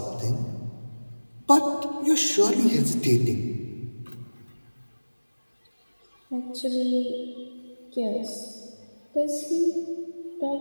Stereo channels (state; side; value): inverted; both; correlation -1.00